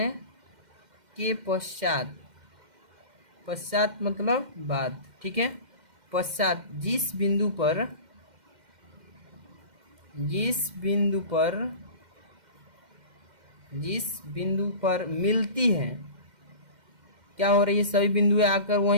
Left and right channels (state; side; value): late; left; 2.1 ms